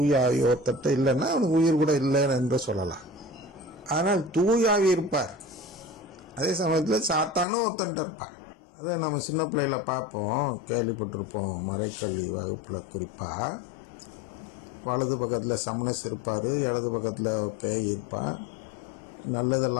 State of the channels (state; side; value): drops out; right; at 7.5 s